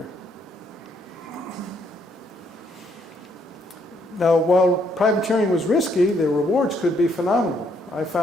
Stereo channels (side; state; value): both; normal; correlation 0.71